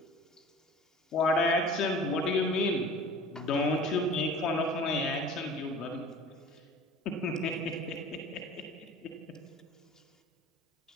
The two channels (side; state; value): both; normal; correlation 0.43